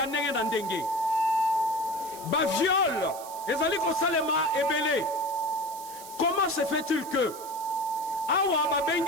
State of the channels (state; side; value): noise; right; hiss, 15 dB below the sound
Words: ndenge na ndenge. Ba viol ezali kosalema ebele. Comment se fait-il que awa